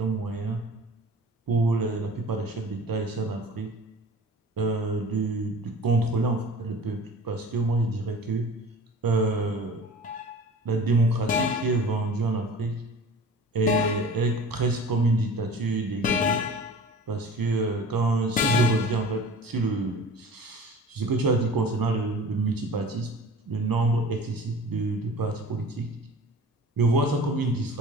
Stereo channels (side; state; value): both; normal; correlation 0.41